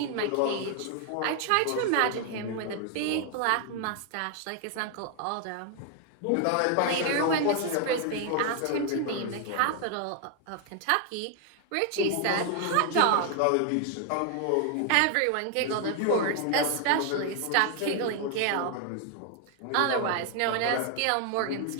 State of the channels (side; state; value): both; different; correlation 0.00